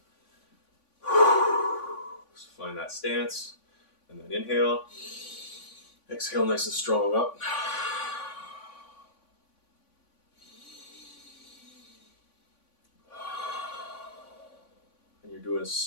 So find that stance. And then inhale. Exhale nice and strong up. And you're doing a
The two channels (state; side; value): late; right; 3.5 ms